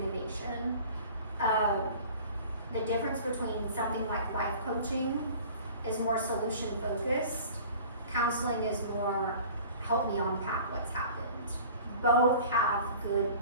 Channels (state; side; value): inverted; both; correlation -0.44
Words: The difference between something like life coaching is more solution focused. Counseling is more help me unpack what's happened. Both have good